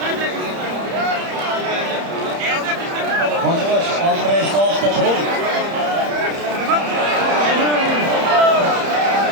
Hocabaş, Andrei Slav'da turib.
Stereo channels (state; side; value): late; left; 30 ms